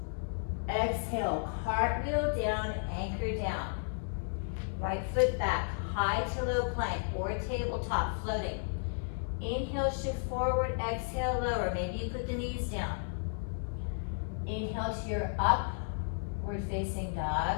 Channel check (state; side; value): silent; right; 55 dB below the other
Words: Exhale, cartwheel down, anchor down. Right foot back, high to low plank or tabletop, floating. Inhale, shift forward, exhale, lower. Maybe you put the knees down. Inhale to your upward facing